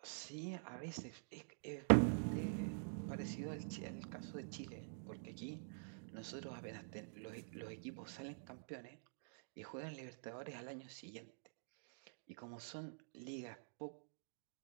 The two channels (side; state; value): left; silent; digital silence